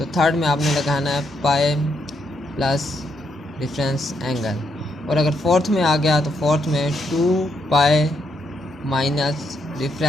थर्ड में आपने लगाना है पाई प्लस डिफरेंस एंगल। और अगर फोर्थ में आ गया तो फोर्थ में 2 पाई माइनस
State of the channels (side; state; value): both; normal; correlation 0.77